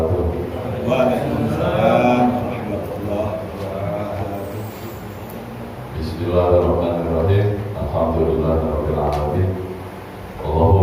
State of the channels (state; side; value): identical; both; correlation 1.00